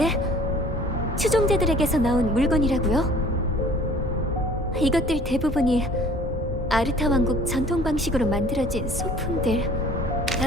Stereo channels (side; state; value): both; normal; correlation 0.51